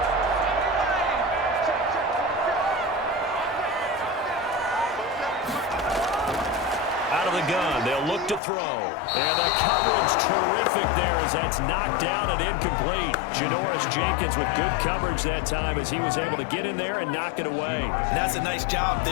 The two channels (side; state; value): right; drops out; at 8.4 s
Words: Gun. They'll look to throw. And the coverage terrific there as that's knocked down and incomplete. Janoris Jenkins with good coverage that time as he was able to get in there and knock it away. And that's a nice job